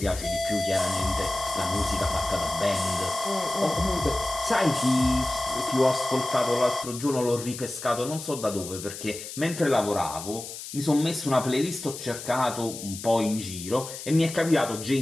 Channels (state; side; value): noise; left; hiss, 10 dB below the sound